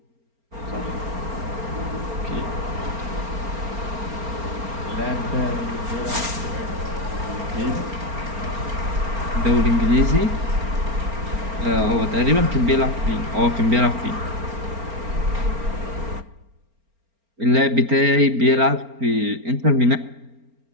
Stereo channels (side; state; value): left; late; 4.4 ms